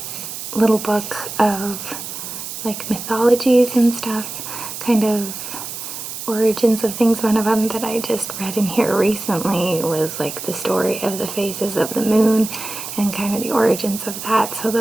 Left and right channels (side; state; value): right; noise; hiss, 8 dB below the sound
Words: little book of like mythologies and stuff, kind of origins of things. One of them that I just read in here recently was like the story of the phases of the moon and kind of the origins of that. So